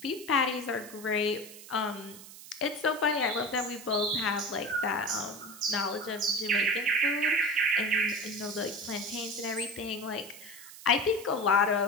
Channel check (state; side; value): noise; right; hiss, 16 dB below the sound